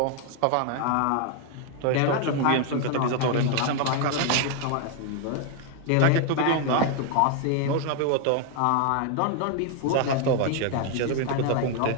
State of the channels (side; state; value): both; different; correlation 0.00